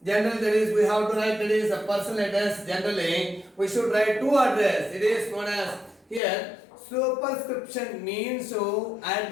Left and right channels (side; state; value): right; drops out; at 6.2 s